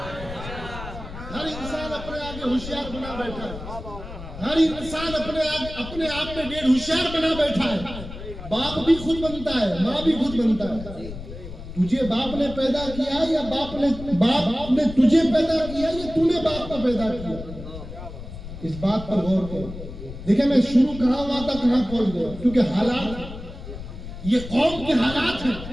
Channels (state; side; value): noise; left; rumble, 11 dB below the sound